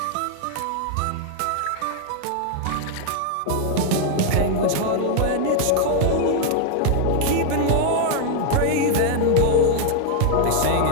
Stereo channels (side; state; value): both; different; correlation 0.00